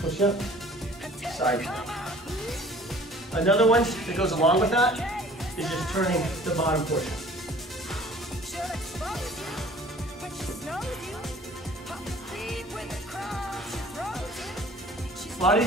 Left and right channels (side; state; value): both; normal; correlation 0.50